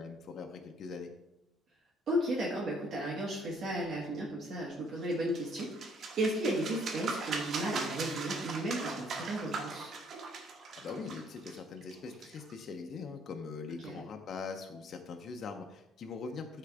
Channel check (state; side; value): normal; both; correlation 0.63